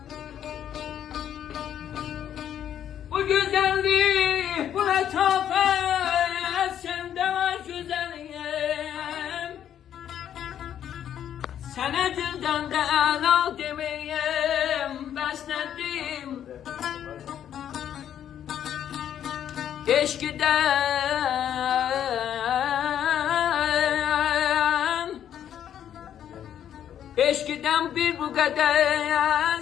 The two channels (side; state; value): right; quieter; 10.0 dB